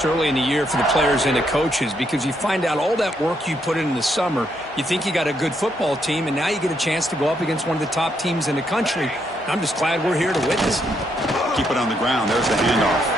early in the year for the players and the coaches because you find out all that work you put in the summer. You think you got a good football team, and now you get a chance to go up against one of the top teams in the country. I'm just glad we're here to witness it. Keep it on the ground. There's the handoff.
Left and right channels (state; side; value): normal; both; correlation 0.76